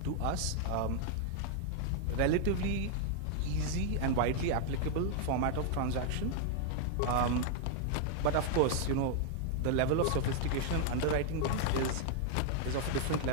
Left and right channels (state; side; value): different; both; correlation 0.00